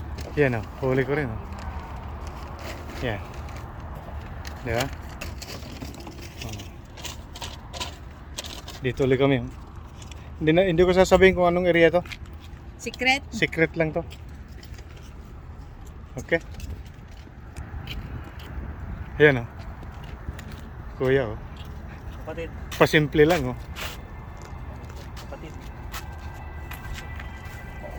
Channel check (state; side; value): identical; both; correlation 1.00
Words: Yan huli ko rin Yan. Diba? Dito ulit kami. Hindi ko sasabihin kung anong area to. Secret? Secret lang to. Okay? Ayan Kuya kapatid. Pasimple lang Kapatid.